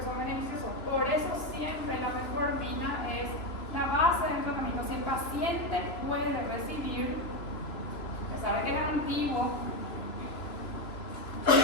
son beneficiosos. Por eso siempre la metformina es la base del tratamiento. Si el paciente puede recibir, se sabe que es antiguo,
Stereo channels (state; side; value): late; right; 3.0 ms